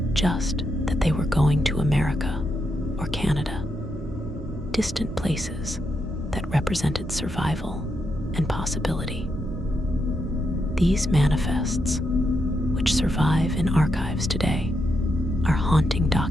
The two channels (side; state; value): both; normal; correlation 0.82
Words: just that they were going to America or Canada, distant places that represented survival and possibility. These manifests, which survive in archives today, are haunting